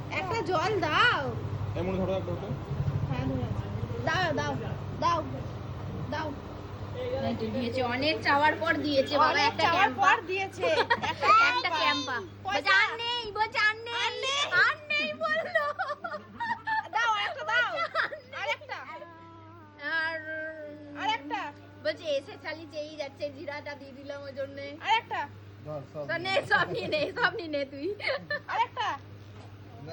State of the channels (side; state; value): both; identical; correlation 1.00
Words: একটা জল দাও। এমন ধরো একটা ওটা। হ্যাঁ দাও দাও দাও দাও। দিয়েছে অনেক চাওয়ার পর দিয়েছে বাবা, একটা চাওয়ার ক্যাম্পা পর দিয়েছে একটা ক্যাম্পা। বলছে আর নেই, বলছে আর নেই বললো। দাও একটা দাও। আরেকটা আর আরেকটা বলছে এসে চালি চেয়েই যাচ্ছে, জিরাটা দিয়ে দিলাম ওই জন্যে। আরেকটা তো নে, সব নিয়ে নে তুই। আরেকটা না